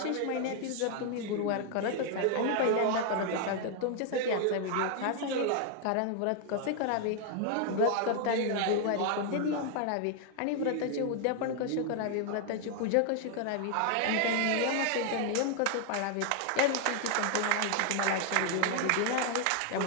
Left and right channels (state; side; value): different; both; correlation 0.00